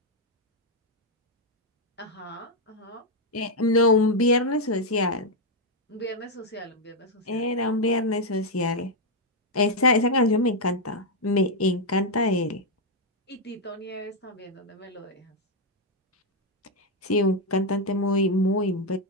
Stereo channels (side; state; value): both; normal; correlation 0.00